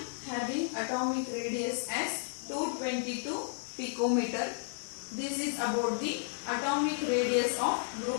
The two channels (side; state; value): right; silent; 56 dB below the other